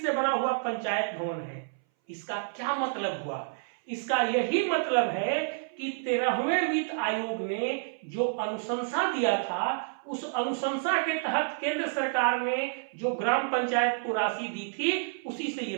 से बना हुआ पंचायत भवन है। इसका क्या मतलब हुआ? इसका यही मतलब है कि 13वें वित्त आयोग ने जो अनुशंसा दिया था, उस अनुशंसा के तहत केंद्र सरकार ने जो ग्राम पंचायत को राशि दी थी, उसी से ये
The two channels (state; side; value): silent; left; 58 dB below the other